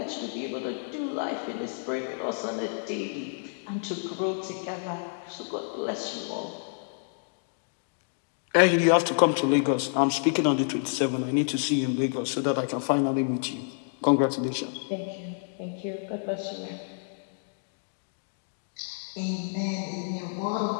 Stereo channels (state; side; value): silent; right; digital silence